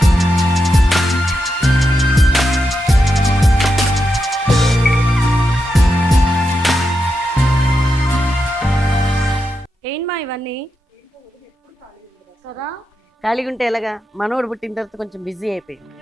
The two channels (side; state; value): both; normal; correlation 0.86